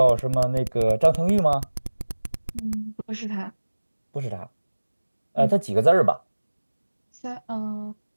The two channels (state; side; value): inverted; both; correlation -1.00